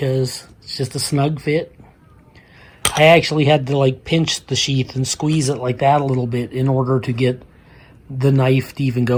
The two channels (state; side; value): identical; both; correlation 1.00